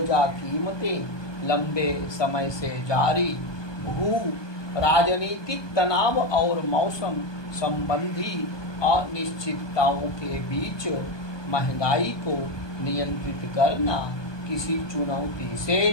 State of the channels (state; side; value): late; right; 1.2 ms